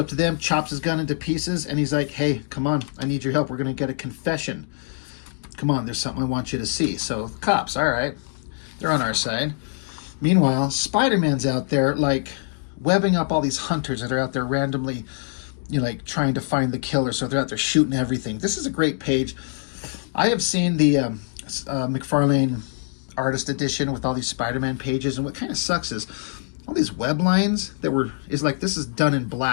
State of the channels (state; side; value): silent; right; digital silence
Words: to them, chops his gun into pieces, and he's like, hey, come on, I need your help. We're going to get a confession. Come on, there's something I want you to see. So, the cops, all right, they're on our side. Meanwhile, Spider-Man's out there, webbing up all these hunters that are out there randomly, trying to find the killer. So they're out there shooting everything. This is a great page. I have seen the McFarlane Artist Edition with all these Spider-Man pages, and what kind of sucks is all these web lines this is done in